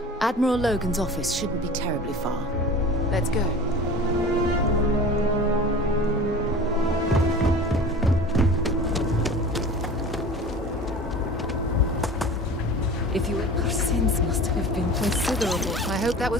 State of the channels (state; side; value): normal; both; correlation 0.38